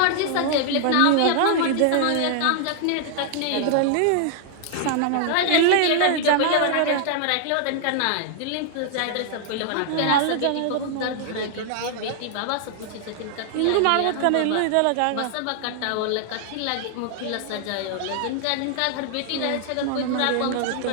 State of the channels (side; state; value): both; different; correlation 0.00